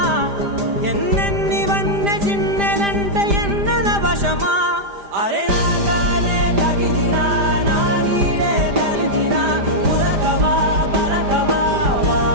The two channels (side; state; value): left; late; 5.0 ms